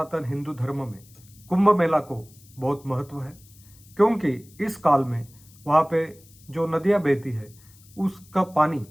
हिंदू धर्म में कुंभ मेला को बहुत महत्व है, क्योंकि इस काल में वहाँ पे जो नदियाँ बहती है उसका पानी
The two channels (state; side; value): noise; left; hiss, 26 dB below the sound